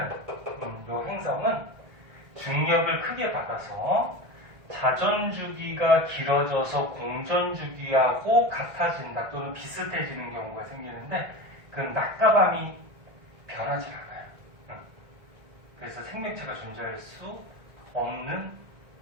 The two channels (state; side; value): late; left; 1.6 ms